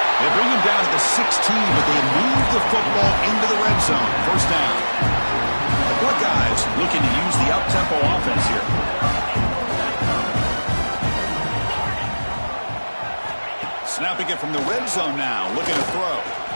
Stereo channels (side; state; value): both; inverted; correlation -1.00